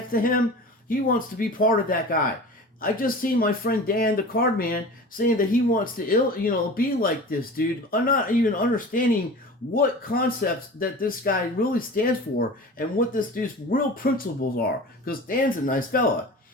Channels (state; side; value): normal; both; correlation 0.37